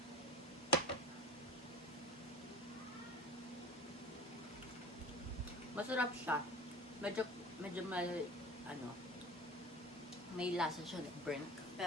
Masarap siya. Medyo may lasa siya ng burnt.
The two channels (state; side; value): normal; both; correlation 0.37